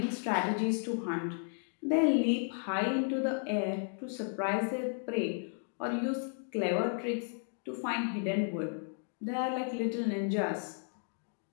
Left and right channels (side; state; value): right; silent; 55 dB below the other